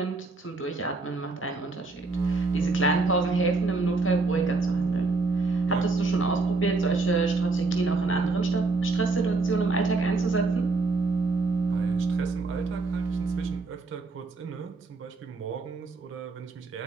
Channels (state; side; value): quieter; left; 3.7 dB